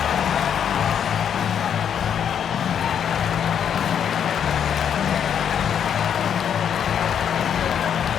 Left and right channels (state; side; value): quieter; right; 8.5 dB